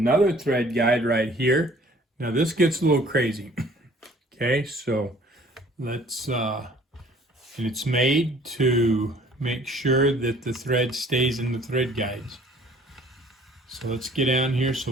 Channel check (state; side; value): normal; both; correlation 0.55